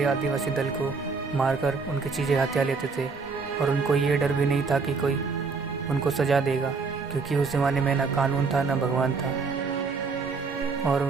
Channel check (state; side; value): quieter; left; 4.7 dB